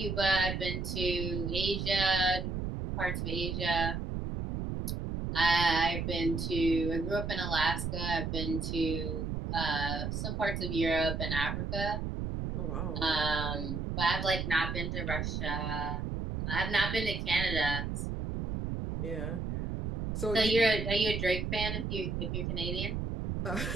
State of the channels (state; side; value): noise; right; rumble, 3 dB below the sound